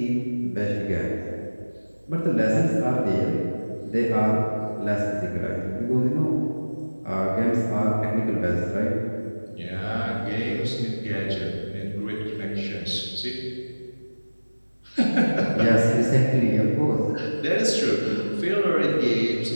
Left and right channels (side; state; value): both; inverted; correlation -1.00